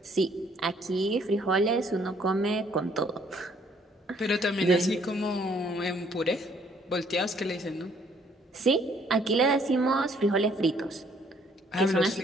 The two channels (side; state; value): both; normal; correlation 0.64